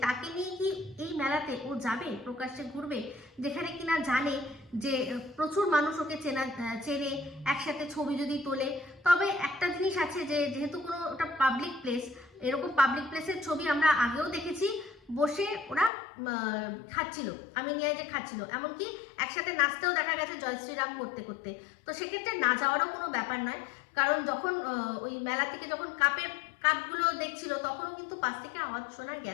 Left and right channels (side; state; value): right; drops out; at 15.9 s